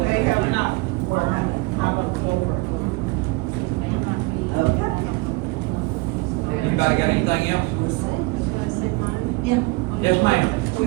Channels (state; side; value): quieter; left; 24.0 dB